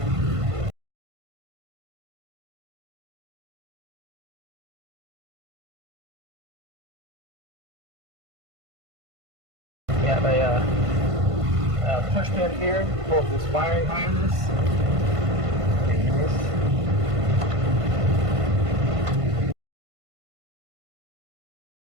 We have a push pin here, pulls this wiring harness.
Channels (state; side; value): late; left; 1.5 ms